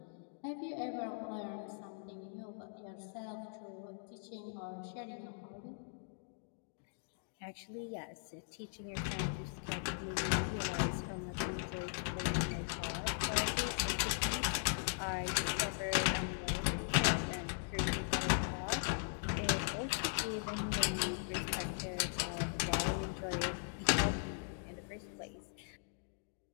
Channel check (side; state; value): right; silent; digital silence